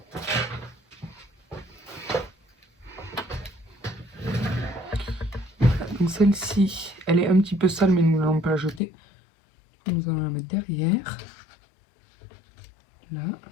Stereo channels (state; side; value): drops out; right; at 8.8 s